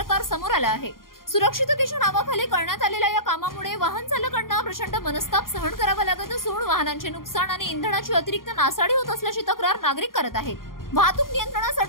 समोर आला आहे. सुरक्षिततेच्या नावाखाली करण्यात आलेल्या या कामामुळे वाहन चालकांना प्रचंड मनस्ताप सहन करावा लागत असून वाहनांचे नुकसान आणि इंधनाची अतिरिक्त नासाडी होत असल्याची तक्रार नागरिक करत आहेत. वाहतूक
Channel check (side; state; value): right; late; 0.91 ms